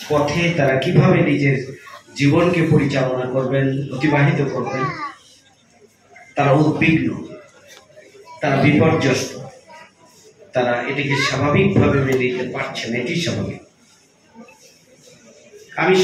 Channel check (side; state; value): both; identical; correlation 1.00